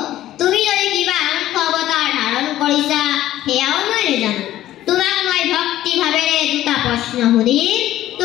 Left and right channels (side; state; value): right; quieter; 13.7 dB